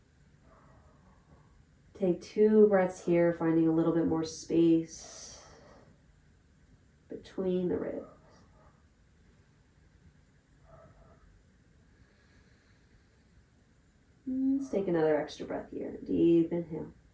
Take 2 breaths here, finding a little bit more space between the ribs. Let's take another extra breath here. Deep inhale.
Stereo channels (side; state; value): both; identical; correlation 1.00